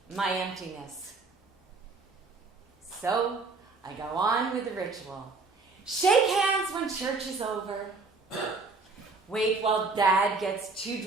my emptiness. So I go on with the ritual. Shake hands when church is over. Wait while Dad gets too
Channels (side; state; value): left; quieter; 3.9 dB